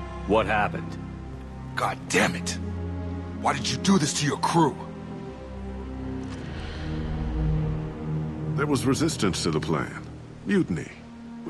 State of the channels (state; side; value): identical; both; correlation 1.00